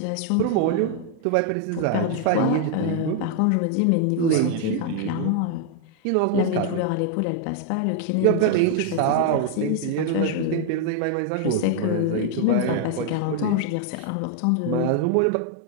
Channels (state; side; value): different; both; correlation 0.00